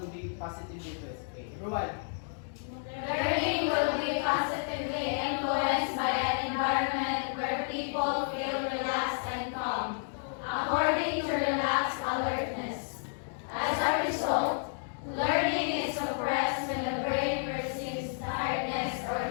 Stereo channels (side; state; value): right; silent; digital silence